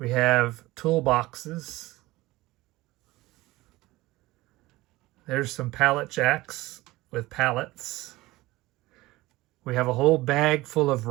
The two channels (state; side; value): quieter; left; 19.2 dB